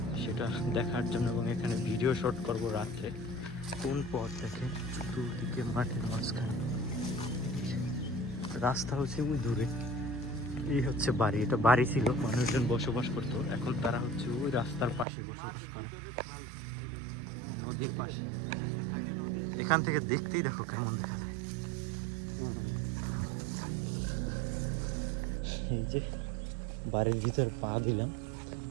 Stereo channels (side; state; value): left; drops out; at 15.1 s